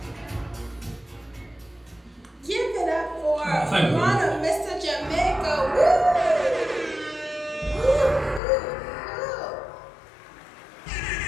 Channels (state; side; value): drops out; right; at 8.4 s